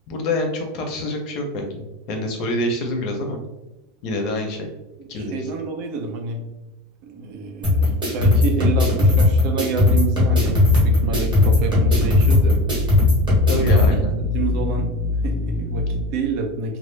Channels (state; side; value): normal; both; correlation 0.35